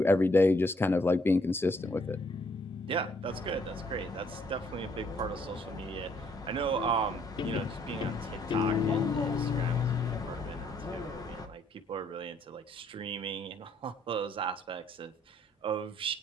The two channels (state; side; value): normal; both; correlation 0.67